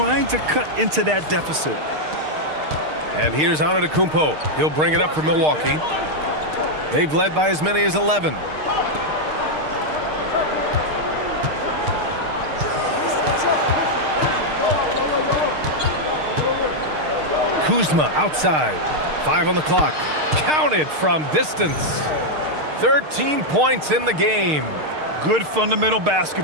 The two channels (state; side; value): late; left; 6.5 ms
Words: to cut into that deficit. And here's ANTETO. He'll bring it up for Milwaukee. They've led by as many as 11. Kuzma outside. 5 on the clock. Counted from distance. 13 points in the game. Good fundamental